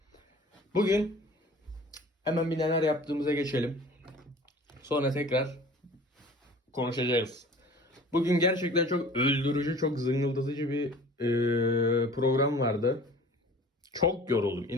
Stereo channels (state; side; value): normal; both; correlation 0.45